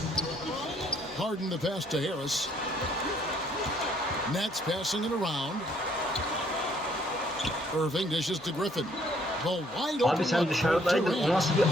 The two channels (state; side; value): normal; both; correlation 0.65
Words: Harden the pass to Harris. Nets passing it around. Irving dishes to Griffin. The wide open. Abi sen dışarıdaydın. O nasıl bir